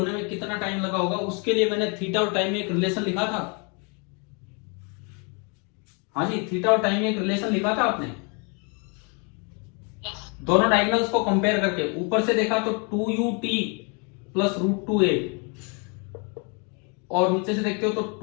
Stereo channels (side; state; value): right; quieter; 34.8 dB